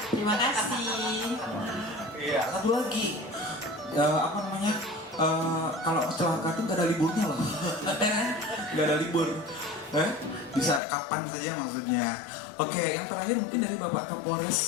Terima kasih. Iya, satu lagi. Apa namanya? Kalau kecelakaan tuh gak ada liburnya loh. Gak ada libur. Bisa kapan saja maksudnya. Oke, yang terakhir mungkin dari Bapak Kapolres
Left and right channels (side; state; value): right; drops out; at 10.8 s